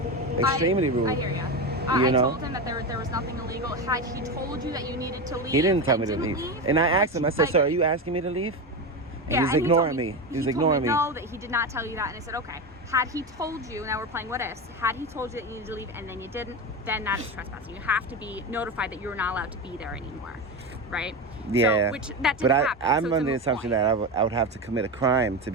Extremely rude. I hear you. You I know? told him that there was nothing illegal. Had he told you that you needed to leave, He didn't tell and me to didn't leave. And I asked him, I said, like- "Sir, are you asking me to leave?" And Yeah, he was and ignoring told me. He was told ignoring me. No, that he did not tell you that, and I said, okay. Had he told you, now we're playing what ifs. Had he told you that you needed to leave and then you didn't, then that is trespassing. You have to be notified that you're not allowed to be there anymore, right? Yeah. So, which that didn't But happen. I'm so it's a under the moot assumption point. that I would have to commit a crime to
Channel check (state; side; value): normal; both; correlation 0.19